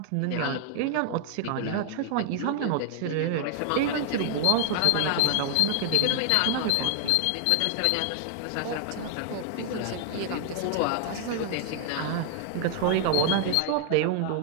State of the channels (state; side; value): different; both; correlation 0.00